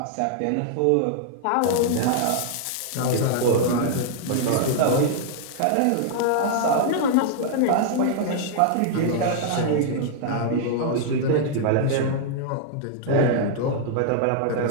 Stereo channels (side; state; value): both; different; correlation -0.01